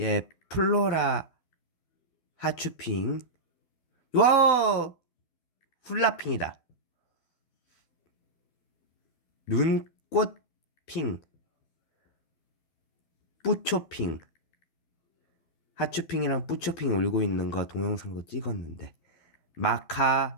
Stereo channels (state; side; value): late; right; 12 ms